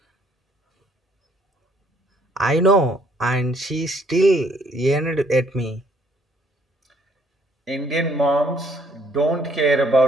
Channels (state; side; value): normal; both; correlation 0.64